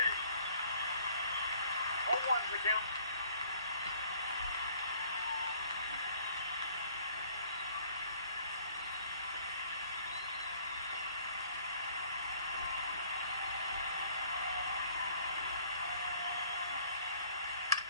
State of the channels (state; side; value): inverted; both; correlation -0.56